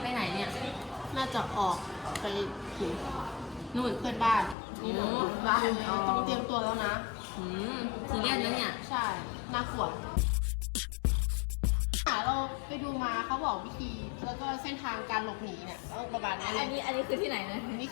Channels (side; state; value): right; drops out; at 4.5 s